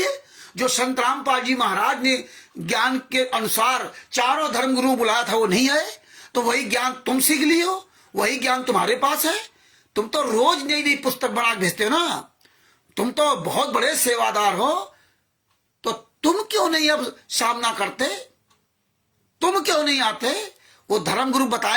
है जो संत रामपाल जी महाराज ने ज्ञान के अनुसार चारों धर्मगुरु बुलाया था, वो नहीं आए। तो वही ज्ञान तुम सीख लिए हो, वही ज्ञान तुम्हारे पास है। तुम तो रोज नई नई पुस्तक बना भेजते हो ना। तुम तो बहुत बड़े सेवादार हो, तो तुम क्यों नहीं अब सामना करते? तुम क्यों नहीं आते? वो धर्मगुरु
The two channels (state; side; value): identical; both; correlation 1.00